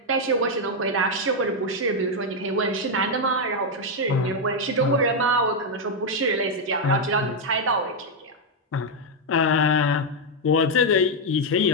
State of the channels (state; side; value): normal; both; correlation 0.01